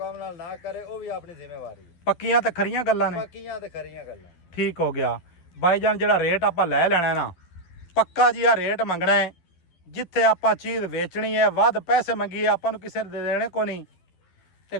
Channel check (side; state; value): right; late; 12 ms